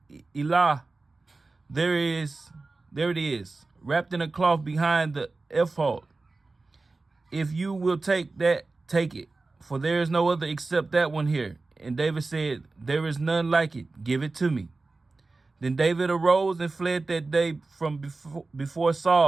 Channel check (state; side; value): quieter; left; 3.5 dB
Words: Elah, there it is, wrapped in a cloth behind the ephod. If you will take that, take it, for there is no other except that one here." And David said, "There is none like it. Give it to me." Then David arose and fled that day from before